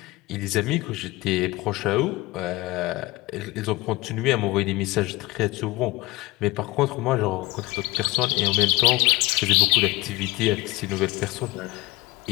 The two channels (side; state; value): right; quieter; 20.2 dB